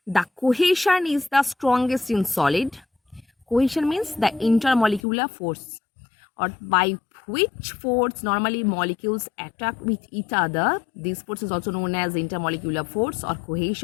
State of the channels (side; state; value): right; drops out; at 5.0 s